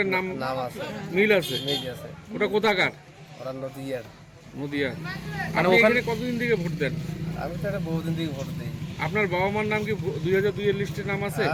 নাম আছে, মিল আছে? মিল আছে। ওটা কোথাকার? ওরা নদীয়ার। নদিয়া। আপনি ওখানে কতদিন থেকে ভোট দেন? আমি তো এটা বহুদিন থেকে ভোট দিই। আপনার বাবা মার নাম কি 2002 এর লিস্টে নাম আছে?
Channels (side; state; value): both; identical; correlation 1.00